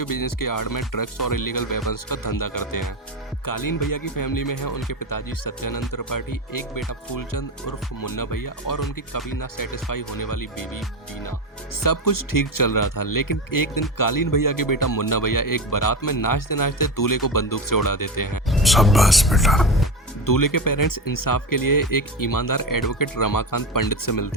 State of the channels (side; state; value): both; normal; correlation 0.19